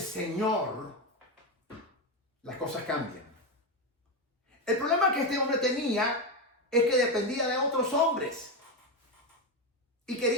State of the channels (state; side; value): normal; both; correlation 0.11